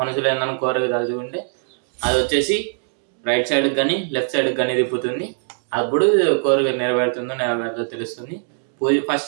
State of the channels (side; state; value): left; silent; digital silence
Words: ఏదైనా కోరిక తలుచుకుంటే అది వచ్చేసి రైట్ సైడ్ కానీ లెఫ్ట్ సైడ్ కానీ తిప్పుతుంది. అప్పుడు కోరిక నెరవేరుతుందో తెలుస్తుంది.